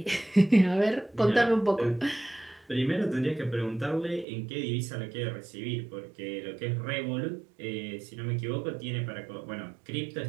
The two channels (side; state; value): left; drops out; at 4.2 s